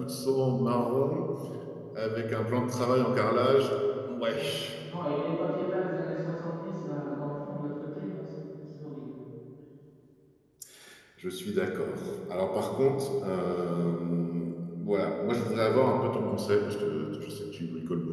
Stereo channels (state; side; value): identical; both; correlation 1.00